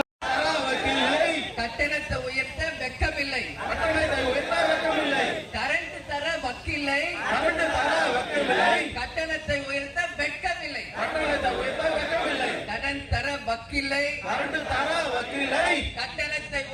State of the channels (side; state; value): both; identical; correlation 1.00